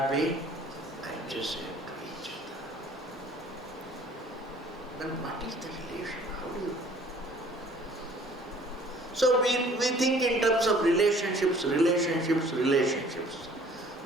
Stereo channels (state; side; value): normal; both; correlation 0.53